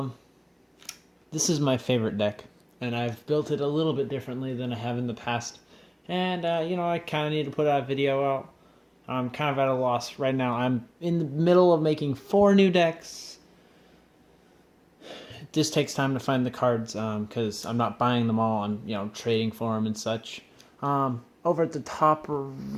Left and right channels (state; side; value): identical; both; correlation 1.00